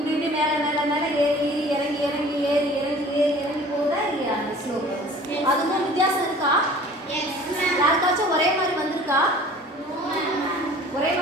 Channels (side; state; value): both; normal; correlation 0.47